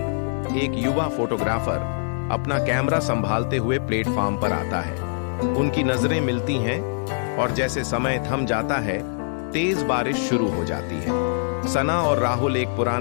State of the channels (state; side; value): silent; right; digital silence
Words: एक युवा फोटोग्राफर, अपना कैमरा संभालते हुए प्लेटफार्म पर आता है। उनकी नजरें मिलती हैं और जैसे समय थम जाता है, तेज बारिश शुरू हो जाती है। सना और राहुल एक